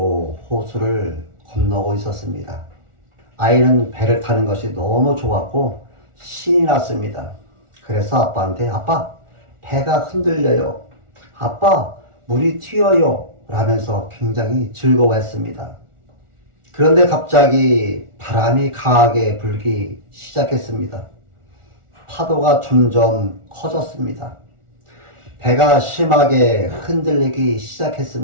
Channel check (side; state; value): left; late; 1.4 ms